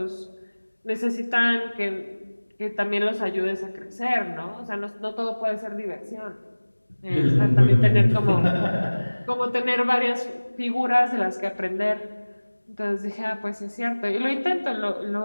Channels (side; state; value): both; inverted; correlation -1.00